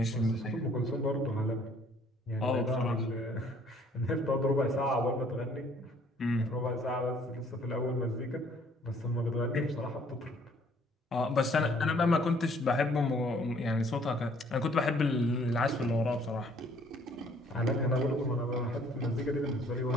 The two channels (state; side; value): normal; both; correlation 0.60